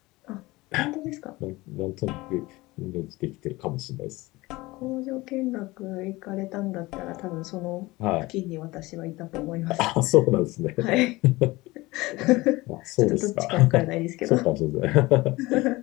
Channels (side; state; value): right; quieter; 20.8 dB